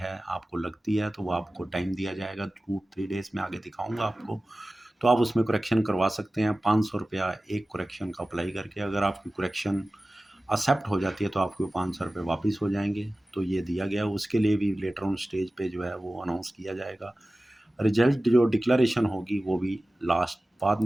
आपको लगती है तो वो आपको टाइम दिया जाएगा 2-3 डेज़ में, आगे दिखाऊँगा आपको। तो आप उसमें करेक्शन करवा सकते हैं। 500 रुपया एक करेक्शन का अप्लाई करके। अगर आपकी करेक्शन एक्सेप्ट हो जाती है तो आपको 500 रुपये वापस हो जाएंगे। तो ये दिया गया, उसके लिए भी लेटर ऑन स्टेज पे जो है वो अनाउंस किया जाएगा। रिजल्ट जो डिक्लेरेशन होगी वो भी लास्ट बाद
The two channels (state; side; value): normal; both; correlation 0.96